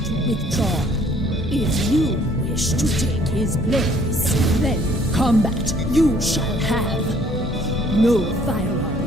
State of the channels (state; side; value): normal; both; correlation 0.60